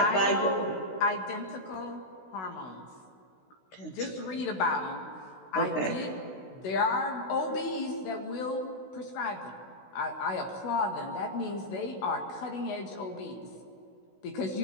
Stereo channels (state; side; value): late; right; 16 ms